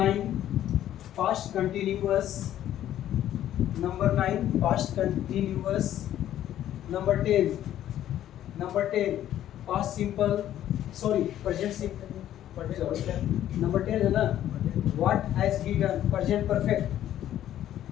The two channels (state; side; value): quieter; right; 11.9 dB